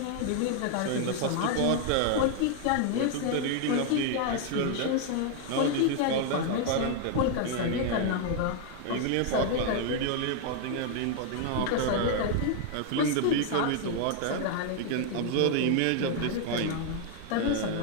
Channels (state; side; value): different; both; correlation 0.00